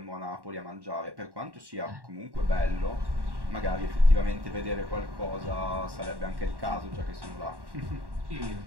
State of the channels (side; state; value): left; late; 1.1 ms